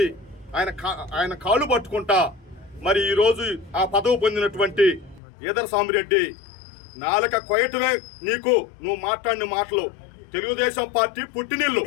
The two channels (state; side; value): drops out; right; at 5.2 s